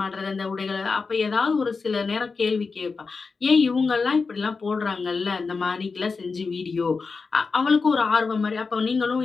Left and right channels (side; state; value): right; quieter; 4.6 dB